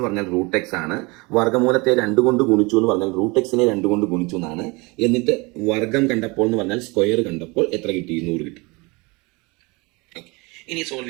പറഞ്ഞാൽ റൂട്ട് എക്സ് ആണ്. വർഗമൂലത്തെ 2 കൊണ്ട് ഗുണിച്ചു എന്ന് പറഞ്ഞാൽ റൂട്ട് എക്സിനെ 2 കൊണ്ട് ഗുണിച്ചു എന്നാണ്. എന്നിട്ട് വർഗം കണ്ടപ്പോൾ എന്ന് പറഞ്ഞാൽ സ്ക്വയർ കണ്ടപ്പോൾ എത്ര കിട്ടി? 100 കിട്ടി. ഇനി സോൾവ്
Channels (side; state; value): left; quieter; 26.4 dB